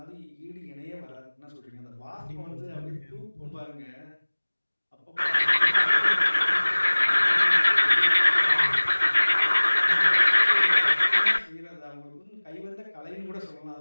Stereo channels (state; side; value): inverted; both; correlation -1.00